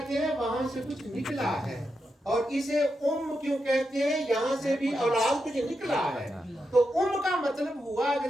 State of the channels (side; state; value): both; normal; correlation 0.86